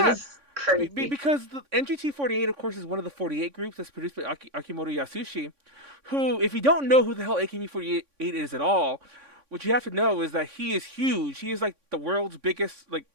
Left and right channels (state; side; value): late; left; 3.6 ms